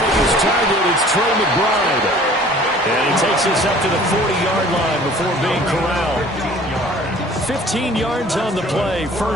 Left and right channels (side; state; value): both; normal; correlation 0.50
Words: his target, it's Trey McBride. And he takes us up to the 40-yard line before being corralled. 15 yards on the play,